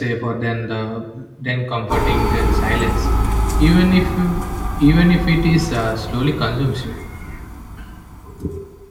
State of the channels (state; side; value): identical; both; correlation 1.00